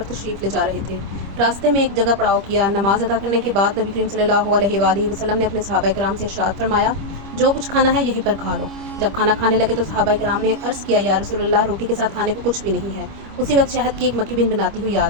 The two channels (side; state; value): left; late; 25 ms